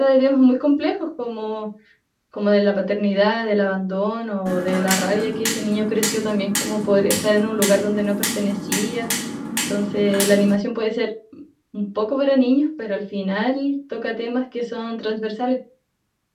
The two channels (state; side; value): identical; both; correlation 1.00